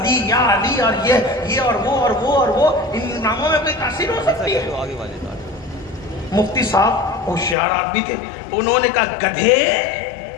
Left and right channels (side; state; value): right; drops out; at 7.6 s